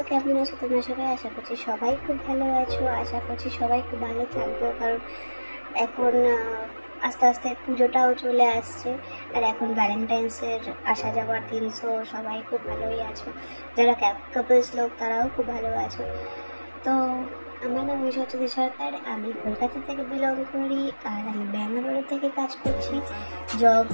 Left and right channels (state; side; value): inverted; both; correlation -1.00